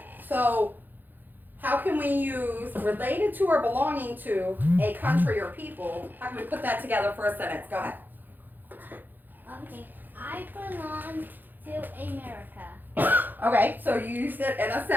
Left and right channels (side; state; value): left; late; 0.088 ms